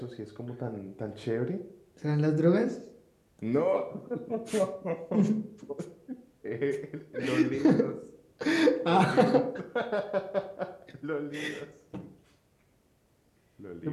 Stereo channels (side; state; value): both; identical; correlation 1.00